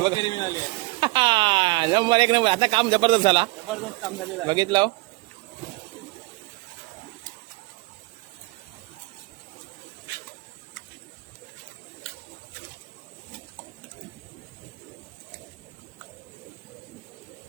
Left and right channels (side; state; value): left; quieter; 24.3 dB